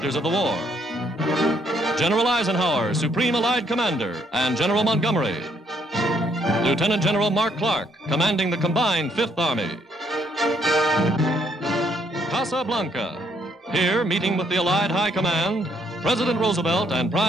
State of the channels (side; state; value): both; normal; correlation 0.70